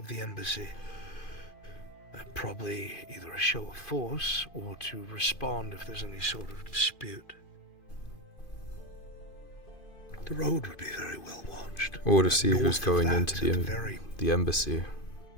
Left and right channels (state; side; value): late; right; 2.5 ms